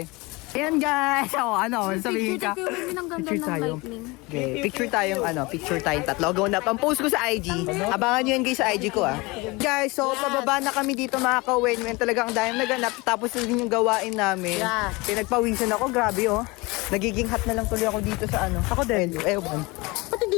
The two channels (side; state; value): right; quieter; 24.5 dB